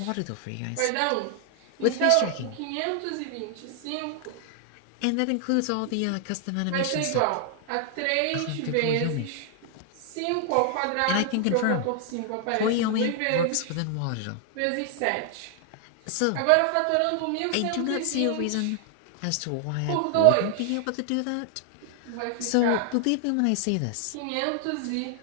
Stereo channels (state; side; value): different; both; correlation 0.00